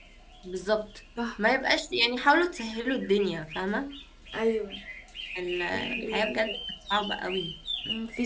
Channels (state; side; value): identical; both; correlation 1.00